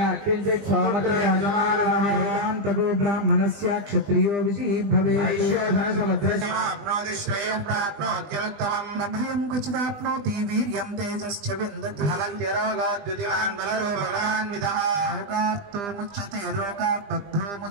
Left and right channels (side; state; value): left; late; 20 ms